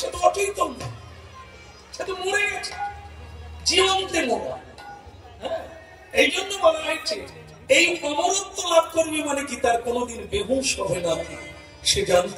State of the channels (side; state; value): both; identical; correlation 1.00